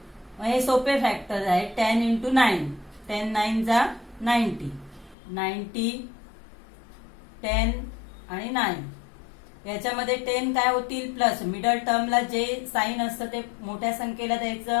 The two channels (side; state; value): right; drops out; at 5.2 s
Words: हे सोपे फॅक्टर आहे। 10 इंटू 9, 10 9 जा 90, 90 10 आणि 9, याच्यामध्ये 10 काय होतील? प्लस, मिडल टर्मला जे साइन असतं ते मोठ्या संख्येला द्यायचं